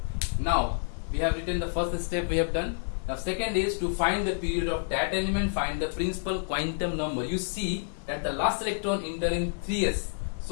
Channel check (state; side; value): silent; right; digital silence